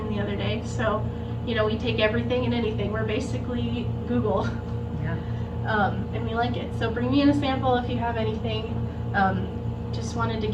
the other day. So, we take everything and anything. We're basically Google. And we like it. So bring me in a sample if you have anything. Just wanted to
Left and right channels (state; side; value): identical; both; correlation 1.00